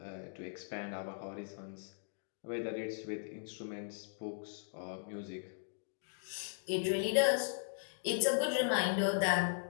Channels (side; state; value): right; silent; digital silence